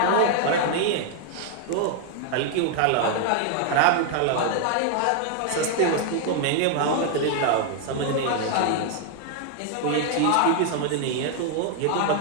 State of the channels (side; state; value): both; different; correlation 0.00